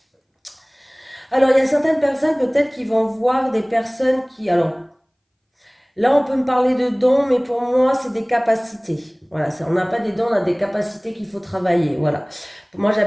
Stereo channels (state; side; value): identical; both; correlation 1.00